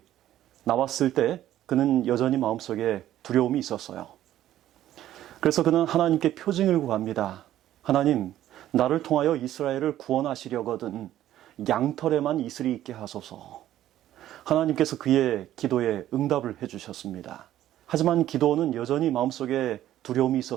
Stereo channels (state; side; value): quieter; left; 12.8 dB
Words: 나왔을 때 그는 여전히 마음속에 두려움이 있었어요. 그래서 그는 하나님께 표징을 구합니다. 하나님, 나를 통하여 이스라엘을 구원하시려거든 양털에만 이슬이 있게 하소서. 하나님께서 그의 기도에 응답을 해주셨습니다. 하지만 기도는 여전히 마음속에 두려움이